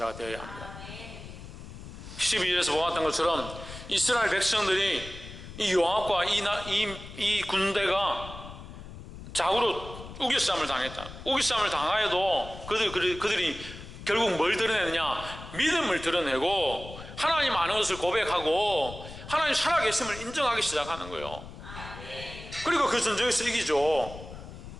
되어야 합니다. 12절에서 보았던 것처럼 이스라엘 백성들이 이 요압과 이 군대가 좌우로 우겨싸움을 당했다. 우겨싸움을 당하여도 그들이 결국 뭘 드러내느냐? 믿음을 드러내고 하나님 아는 것을 고백하고 하나님 살아계심을 인정하기 시작하는 거예요. 그리고 그 전쟁에서 이기죠.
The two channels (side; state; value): left; noise; rumble, 13 dB below the sound